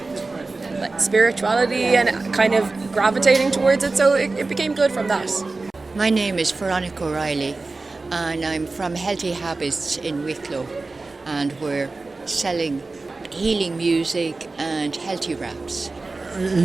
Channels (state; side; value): quieter; left; 3.5 dB